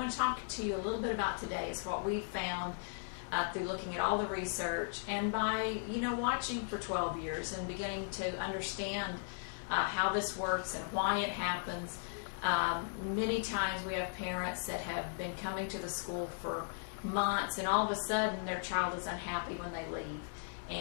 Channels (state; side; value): silent; right; 53 dB below the other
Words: to talk to you a little bit about today is what we've found through looking at all the research and by watching for 12 years and beginning to understand how this works and why it happens. Many times we have parents that have been coming to the school for months, and all of a sudden their child is unhappy when they leave,